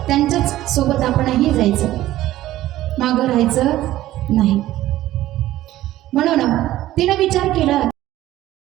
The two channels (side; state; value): left; quieter; 14.8 dB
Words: त्यांच्याच सोबत आपणही जायचं, मागं राहायचं नाही. म्हणून तिनं विचार केला